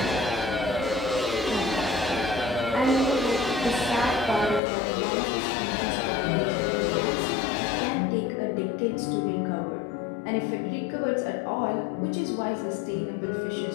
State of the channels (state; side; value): drops out; right; at 4.6 s